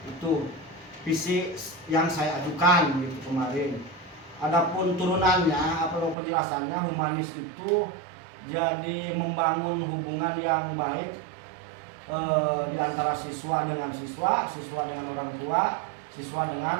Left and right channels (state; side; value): drops out; left; at 6.2 s